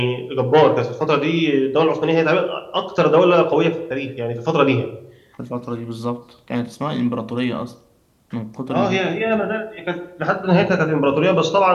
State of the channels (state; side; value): identical; both; correlation 1.00